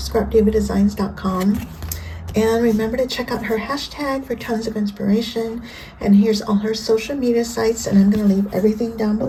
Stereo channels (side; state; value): both; identical; correlation 1.00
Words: And remember to check out her hashtag for tons of inspiration. And here's all her social media sites, and I'm going to leave everything down